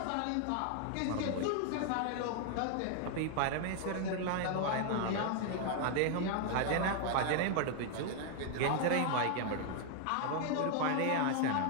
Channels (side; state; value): both; different; correlation 0.00